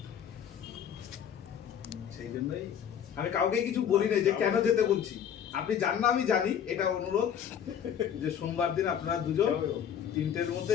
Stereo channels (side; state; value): right; quieter; 8.8 dB